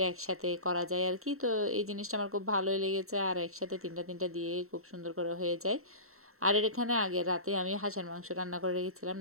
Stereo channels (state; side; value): late; left; 0.63 ms